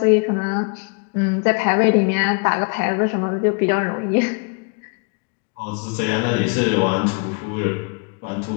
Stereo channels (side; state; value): right; quieter; 35.7 dB